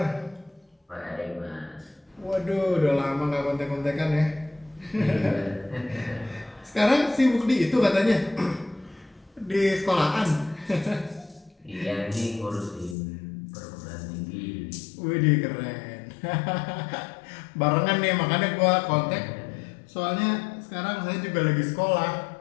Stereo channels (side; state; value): right; drops out; at 13.0 s